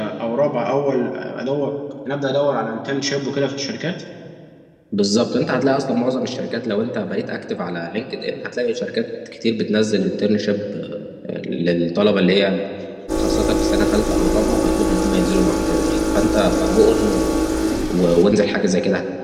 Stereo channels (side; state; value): both; identical; correlation 1.00